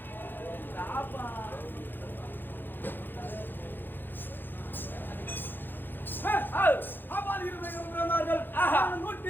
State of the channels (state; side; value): late; right; 0.095 ms